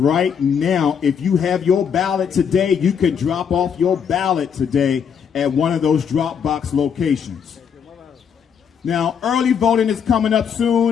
now. If you have your ballot today, you can drop off your ballot today at one of those drop box locations. Now, early voting is coming up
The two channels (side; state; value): right; quieter; 7.3 dB